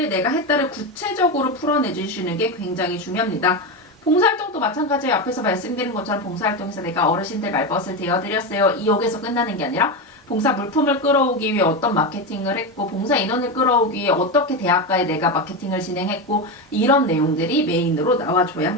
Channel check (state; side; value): normal; both; correlation 0.15